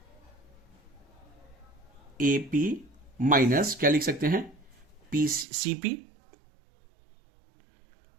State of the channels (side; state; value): left; drops out; at 5.5 s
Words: एपी माइनस क्या लिख सकते हैं, पी सीपी,